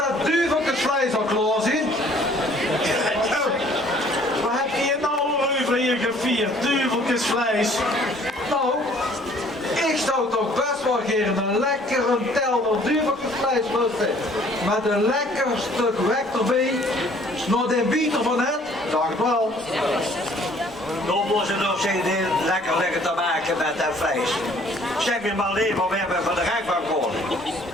duiveltjesvlees al klaar zijn. Wat heb je nou over hier gevierd? Duiveltjesvlees. Nou, ik zou toch best wel geen een lekkere telner duiveltjesvlees lusten. Met een lekker stuk wek erbij. Nog de bieter van het, dacht wel. Dan moeten ze nog eens lekker te maken met dat vlees. Zeg me maar alleen maar, we hebben van de rechtbank gehoord.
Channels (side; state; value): both; normal; correlation 0.57